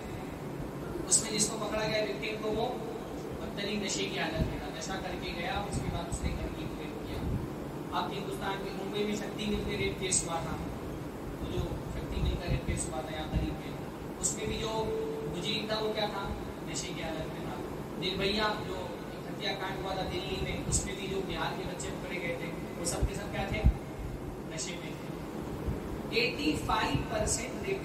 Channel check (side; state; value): both; identical; correlation 1.00